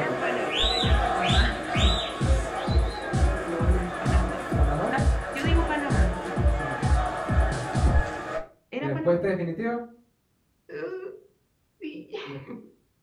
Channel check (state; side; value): identical; both; correlation 1.00